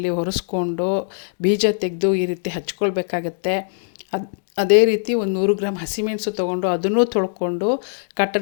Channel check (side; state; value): right; silent; digital silence